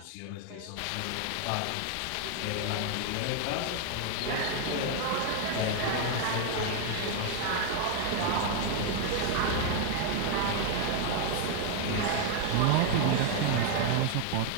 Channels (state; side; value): different; both; correlation 0.00